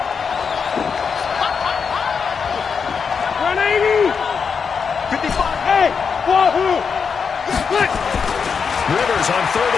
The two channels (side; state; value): right; quieter; 6.0 dB